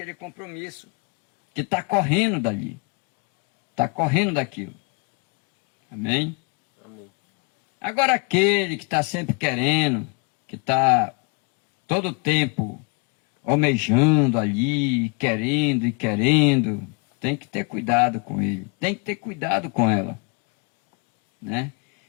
compromisso, que está correndo dali, está correndo daquilo. Amém? Amém. Agora aquele que está sempre querendo, que está todo o tempo almejando ali, querendo e querendo, tem que ter cuidado com ele, tem que ter cuidado com ela, né?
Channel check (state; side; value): quieter; right; 32.3 dB